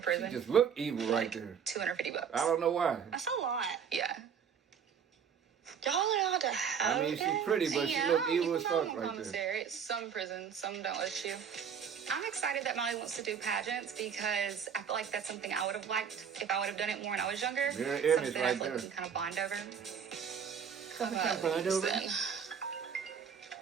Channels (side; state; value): left; quieter; 7.2 dB